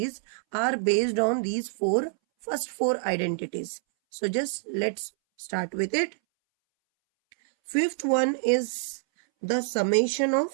are based on these first four identities. So, just let's start with it. Fifth one is the summation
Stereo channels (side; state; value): left; silent; 60 dB below the other